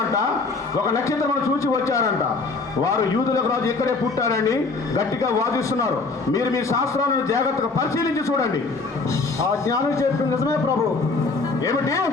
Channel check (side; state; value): right; quieter; 3.9 dB